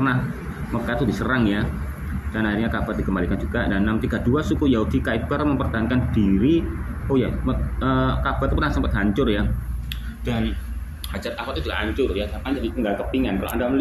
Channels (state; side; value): identical; both; correlation 1.00